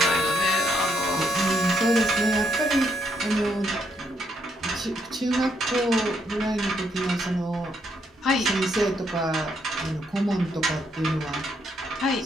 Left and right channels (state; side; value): normal; both; correlation 0.74